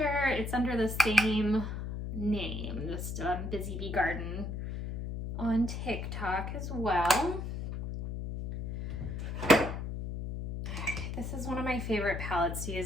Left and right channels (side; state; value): left; noise; hum, 5 dB below the sound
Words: it's under the same name, just Busy Bee Garden on TikTok as well. This is one of my favorite palettes to